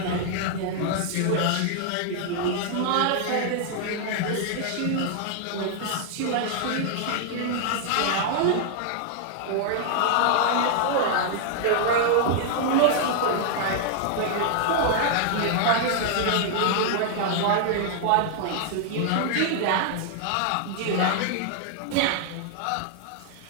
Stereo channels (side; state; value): both; different; correlation 0.00